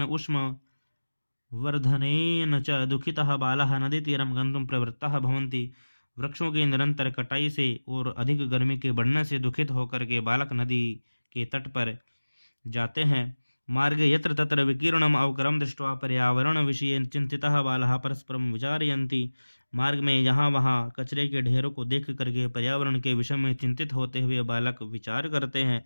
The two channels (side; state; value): both; inverted; correlation -1.00